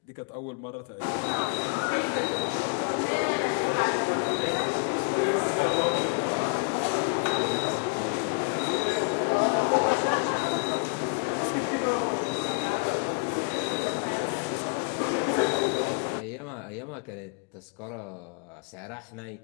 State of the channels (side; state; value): right; quieter; 39.4 dB